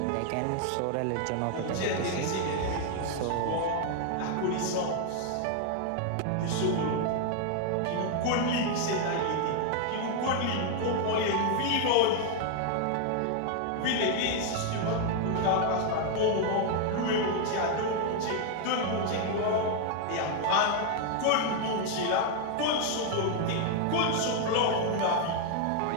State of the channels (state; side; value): different; both; correlation 0.00